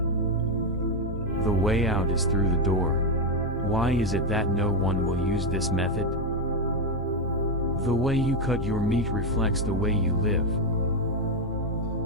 The way out is through the door. Why is it that no one will use this method? The way you cut your meat reflects the way you live.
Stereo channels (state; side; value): normal; both; correlation 0.05